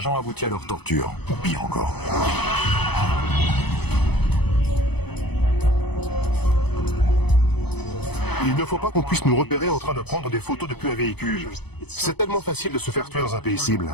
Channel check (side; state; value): right; late; 0.98 ms